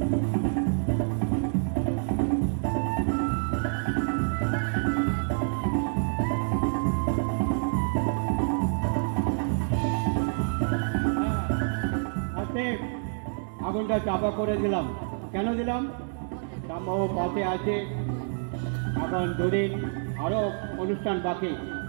আগুনটা চাপা করে দিলাম। কেন দিলাম? রামবাবু পাশে আছে, এখন দুদিন আরও অনুষ্ঠান বাকি,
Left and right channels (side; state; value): left; silent; digital silence